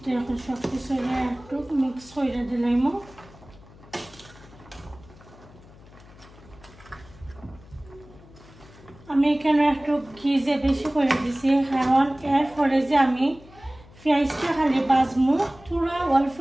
তো এখন সব কিছু একটু মিক্স করে দিলাম। আমি এখানে একটু ঘি যে বেশি করে দিছি, কারণ এরপরে যে আমি পেঁয়াজটা খালি বাজমু, পুরা অল্প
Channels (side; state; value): left; noise; hum, 22 dB below the sound